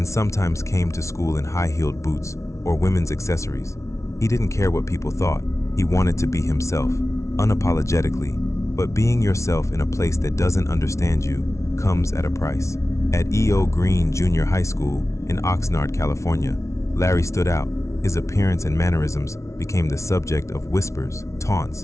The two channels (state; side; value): late; right; 0.14 ms